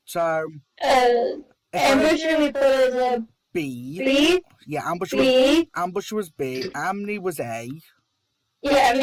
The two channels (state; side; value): identical; both; correlation 1.00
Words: So, Ambusher we put as a B. B. Yeah, Ambusher was B. Amni was A. Yeah,